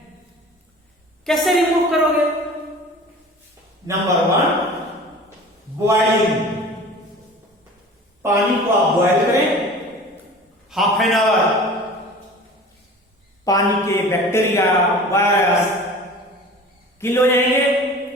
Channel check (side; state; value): both; normal; correlation 0.41